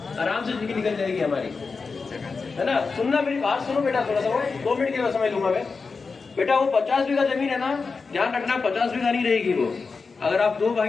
आराम से जिंदगी निकल जाएगी हमारी, है ना। सुनना मेरी बात सुनो बेटा, थोड़ा सा 2 मिनट के बाद समझ लूंगा मैं। बेटा वो 50 बीघा जमीन है ना, ध्यान रखना 50 बीघा नहीं रहेगी वो। अगर आप 2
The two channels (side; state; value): right; quieter; 4.6 dB